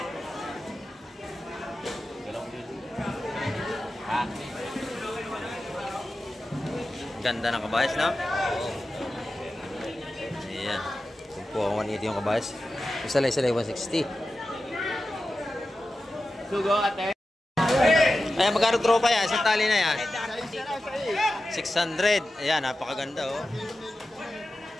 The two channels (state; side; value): normal; both; correlation 0.93